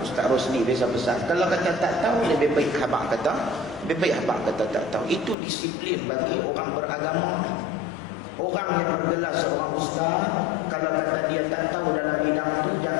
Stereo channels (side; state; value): right; drops out; at 5.4 s